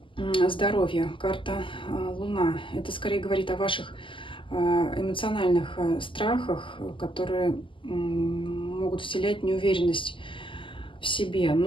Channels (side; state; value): right; late; 0.25 ms